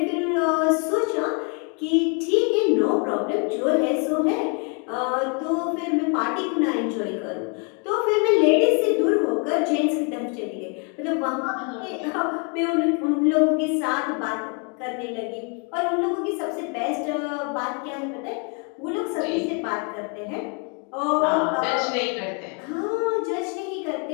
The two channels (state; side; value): quieter; right; 36.6 dB